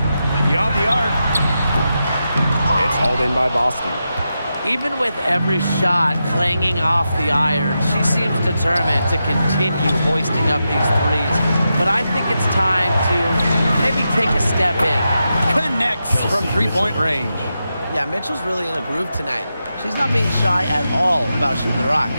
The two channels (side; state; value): both; inverted; correlation -0.88